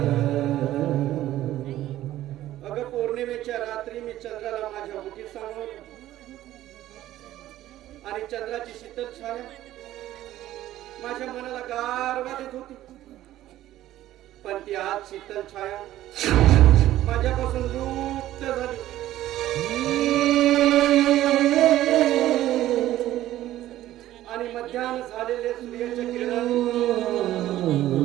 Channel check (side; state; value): left; quieter; 14.0 dB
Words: अगं पौर्णिमेच्या रात्री मी चंद्राला माझ्या ओठीत सामावलं आणि चंद्राची शीतल छाया माझ्या मनाला गारवा देत होती. पण ती आज शीतल छाया माझ्यापासून लुप्त झाली. आणि मध्याह्न झालेले सूर्याच्या किरणाने